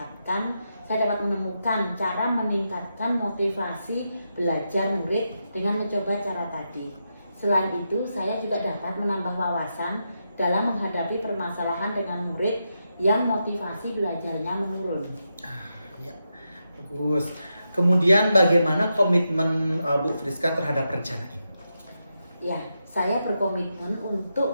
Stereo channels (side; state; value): both; inverted; correlation -0.86